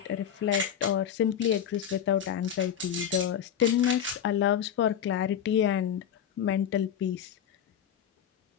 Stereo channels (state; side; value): quieter; right; 9.1 dB